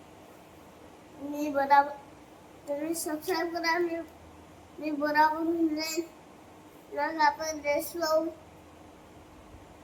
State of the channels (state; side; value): identical; both; correlation 1.00